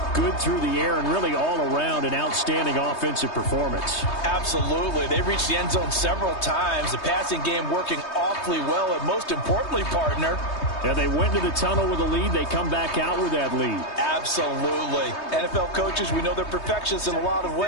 good through the air and really all around an outstanding offensive performance. Absolutely. They reached the end zone several times. The passing game working awfully well, and most importantly, partner, yeah, they went to the tunnel with a lead. They come back out with that lead. Absolutely. NFL coaches, we know they're perfectionists in a lot of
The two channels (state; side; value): late; right; 3.2 ms